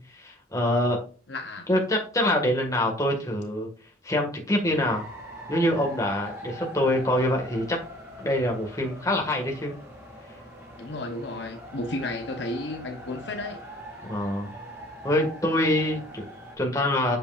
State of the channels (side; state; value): both; normal; correlation 0.53